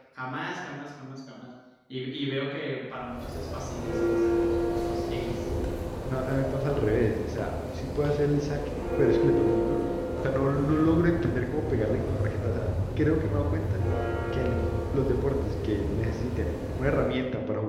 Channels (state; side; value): identical; both; correlation 1.00